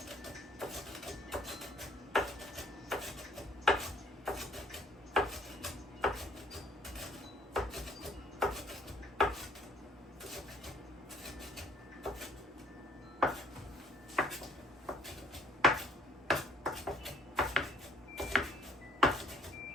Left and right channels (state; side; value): normal; both; correlation 0.60